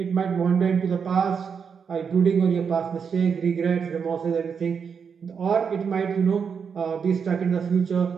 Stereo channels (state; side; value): quieter; left; 6.4 dB